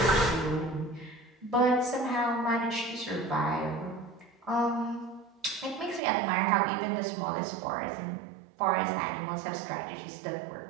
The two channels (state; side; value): drops out; left; at 6.0 s